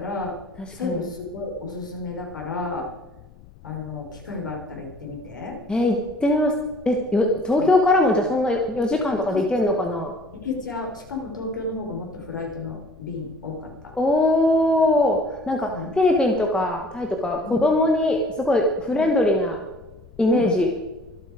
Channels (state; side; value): noise; left; rumble, 23 dB below the sound